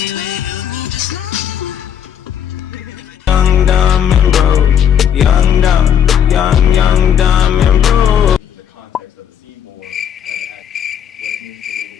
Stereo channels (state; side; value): quieter; right; 8.9 dB